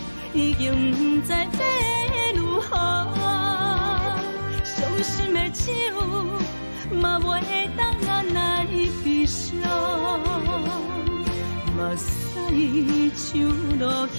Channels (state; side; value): inverted; both; correlation -1.00